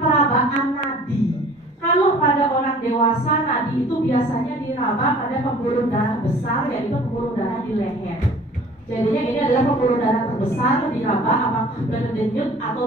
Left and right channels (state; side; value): normal; both; correlation 0.49